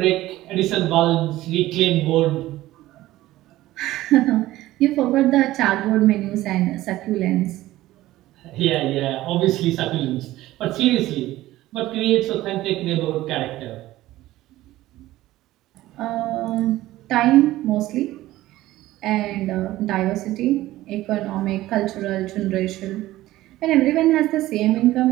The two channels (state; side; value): quieter; left; 16.1 dB